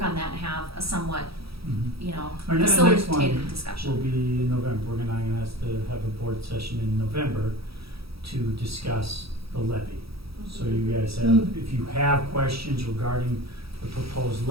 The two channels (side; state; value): left; late; 0.76 ms